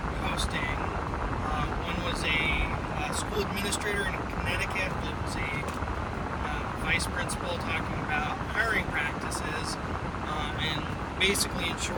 posting. One was a school administrator in Connecticut that was a vice principal talking about hiring practices, and basically, in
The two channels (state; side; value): identical; both; correlation 1.00